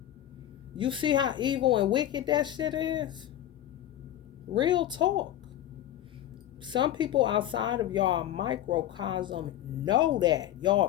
You see how evil and wicked that shit is? Real talk. Some people outside of y'all microcosm know that. Y'all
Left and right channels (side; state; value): right; quieter; 12.3 dB